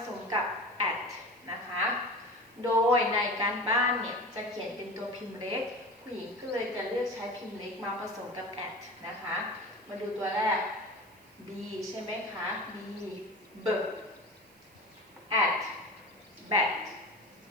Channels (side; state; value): right; noise; hiss, 28 dB below the sound